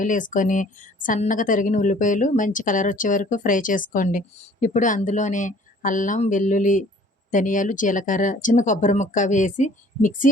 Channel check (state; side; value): normal; both; correlation 0.54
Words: ఏసుకొని, సన్నగా తరిగిన ఉల్లిపాయలు మంచి కలర్ వచ్చే వరకు ఫ్రై చేసుకోండి. ఇప్పుడు అందులోనే అల్లం, వెల్లుల్లి, ధనియాలు, జీలకర్ర, చిన్న కొబ్బరి ముక్క వేసి మిక్సీ